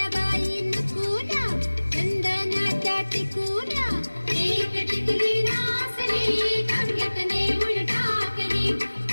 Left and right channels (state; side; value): inverted; both; correlation -1.00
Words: बाई नकुल्या चंदनाच्या टिकुल्या एक टिकली नासली गंगेत नेऊन टाकली